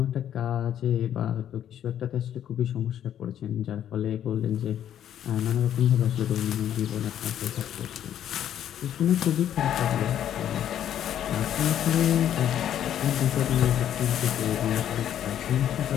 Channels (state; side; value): quieter; right; 10.4 dB